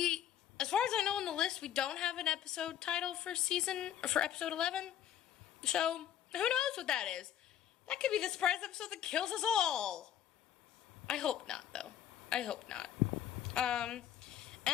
As far as I know on the list, we don't have an episode title for episode 11. So, who knows what that is? That could be the surprise episode that kills us all. I hope not, though. I hope not.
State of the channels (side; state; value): right; quieter; 10.6 dB